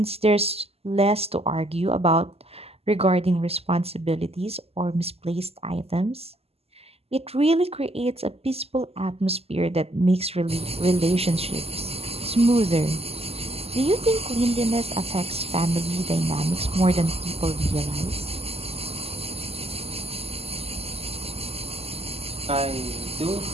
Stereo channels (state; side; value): late; left; 0.29 ms